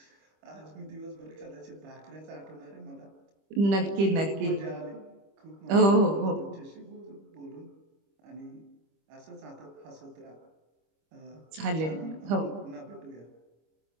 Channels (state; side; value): late; left; 25 ms